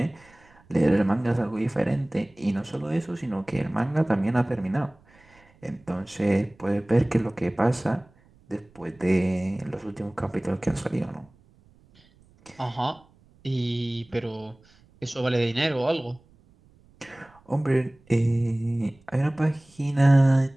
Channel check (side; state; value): right; noise; rumble, 30 dB below the sound